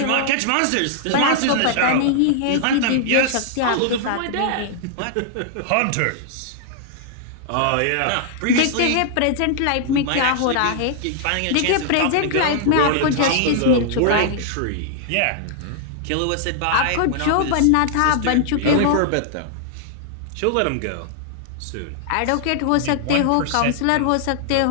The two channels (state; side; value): different; both; correlation -0.01